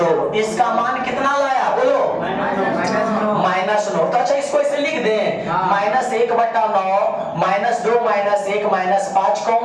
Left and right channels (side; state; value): both; identical; correlation 1.00